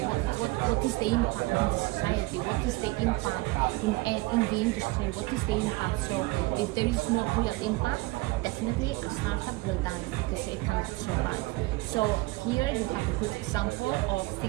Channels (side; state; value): left; quieter; 21.7 dB